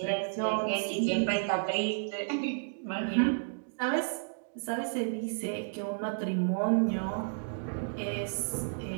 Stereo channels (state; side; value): silent; left; digital silence